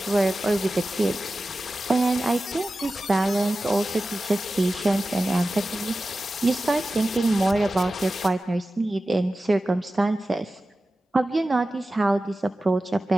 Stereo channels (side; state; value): both; normal; correlation 0.94